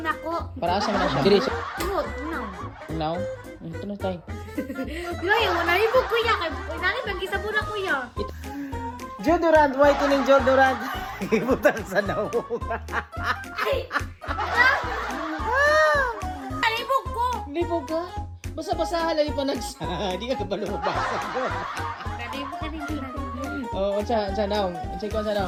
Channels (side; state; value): both; identical; correlation 1.00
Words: Para asa man na siya. Diri sa now. Ito na tayo. Yung nalibog ko ya kay nani bang gisabon ako ya. Deodorant, whitening deodorant. Ibutang sa naong. Nalibog ko. Hindi po ba? Basa-basa halay pa nagsa. Di ka kabalubasa ko. Nalibog ka din nalibog. Oh, unsa naong? Unsa ko unsa